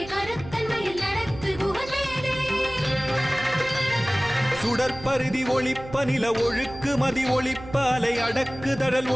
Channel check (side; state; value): right; noise; hum, 15 dB below the sound